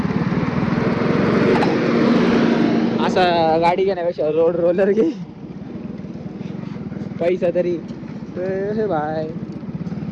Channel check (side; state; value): both; identical; correlation 1.00